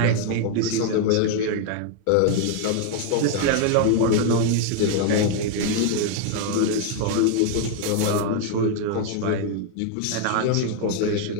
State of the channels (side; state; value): both; different; correlation 0.00